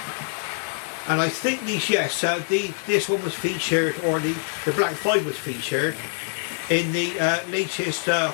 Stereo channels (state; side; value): silent; right; 62 dB below the other